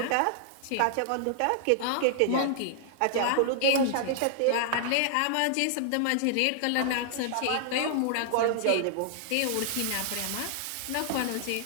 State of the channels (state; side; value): different; both; correlation -0.01